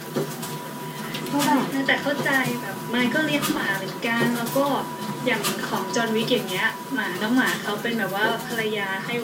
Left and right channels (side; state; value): both; identical; correlation 1.00